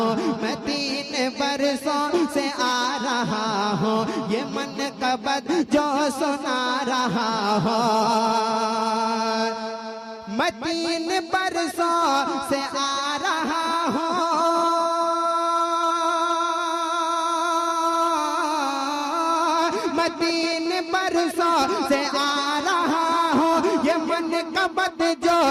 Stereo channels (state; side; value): identical; both; correlation 1.00